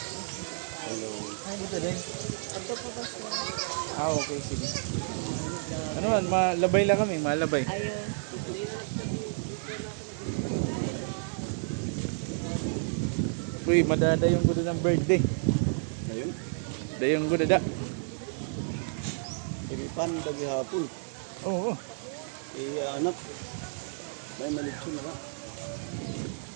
Hi, kita din. Ito po ba siya? Okay, sige. Ano man, malabay lang kami, malabay. Ayun. Uy, madadayong ko doon ng birthday. Ayun, Dayong ko dada. iripan dagi hapon. Oo. Anak, may malitso na ka.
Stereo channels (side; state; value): left; silent; digital silence